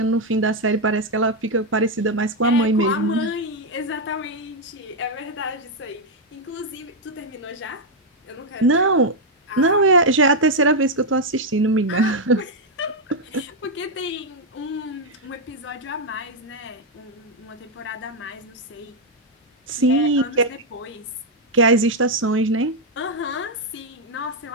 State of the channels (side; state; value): both; normal; correlation 0.00